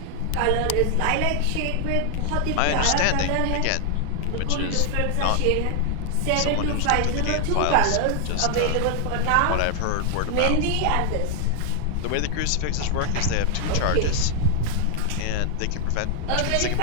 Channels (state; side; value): different; both; correlation 0.00